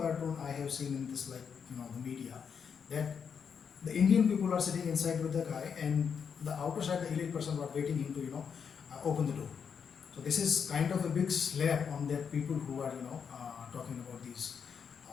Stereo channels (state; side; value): quieter; right; 6.8 dB